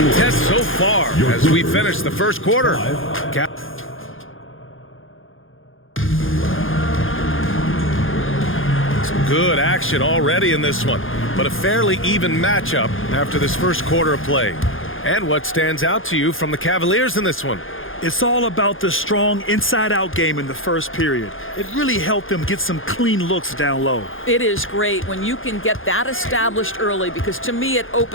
so far as we finish the first quarter. Some good action already in this one, but a fairly even matchup after this first quarter of play. And what stands out to you from the Cavaliers in this one? It's all about the strong inside-out game in the first period. It really helped them get some clean looks down low. It is great when you can get that established early, because to me it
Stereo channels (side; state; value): right; late; 0.59 ms